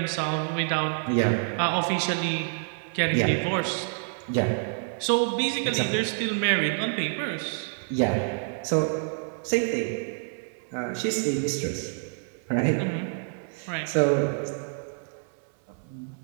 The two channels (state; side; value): silent; left; digital silence